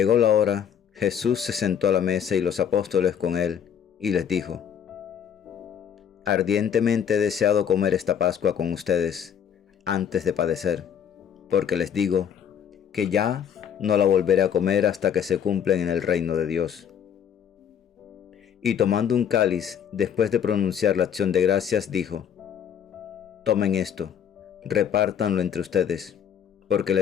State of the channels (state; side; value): quieter; right; 8.4 dB